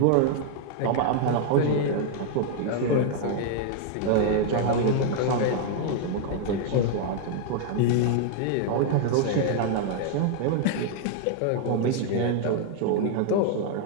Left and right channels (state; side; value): different; both; correlation 0.00